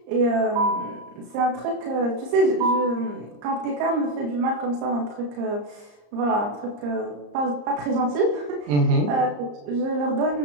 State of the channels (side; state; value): left; late; 34 ms